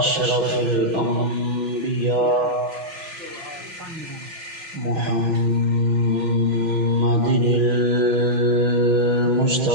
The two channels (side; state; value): left; late; 5.9 ms